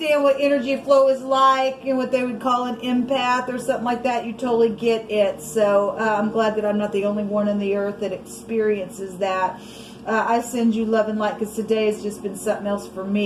what energy flow is like and what they would call an empath or something like that, you totally get it. So I'm glad that I'm not the only one on the earth that experiences that. I send you love and light because today has just been something else for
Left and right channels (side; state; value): both; identical; correlation 1.00